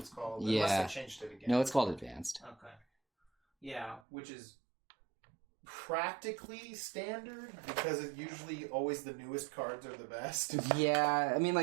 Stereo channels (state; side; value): drops out; left; at 4.0 s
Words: called. Yeah. Unless they changed it again. No, it's called advanced. Okay. Yeah, which is practically standard because it usually always the newest cards are the best. Yeah, I mean,